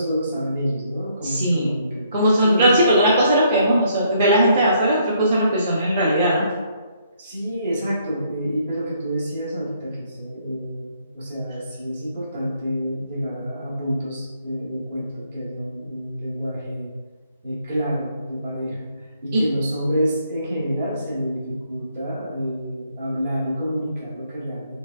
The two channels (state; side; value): inverted; both; correlation -0.69